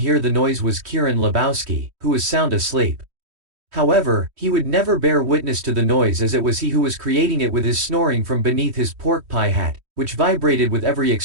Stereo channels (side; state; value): left; late; 3.1 ms